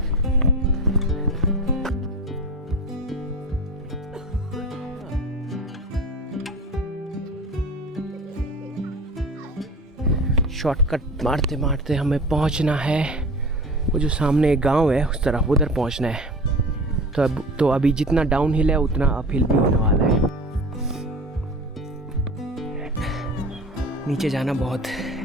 Shortcut मारते मारते हमें पहुंचना है वो जो सामने एक गांव है उस तरफ, उधर पहुंचना है। तो अभी जितना डाउन हिल है उतना अप हिल भी होने वाला है। नीचे जाना बहुत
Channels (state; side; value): normal; both; correlation 0.35